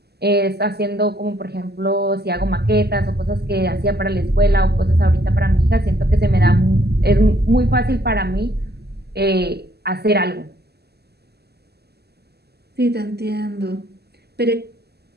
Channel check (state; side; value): late; left; 0.47 ms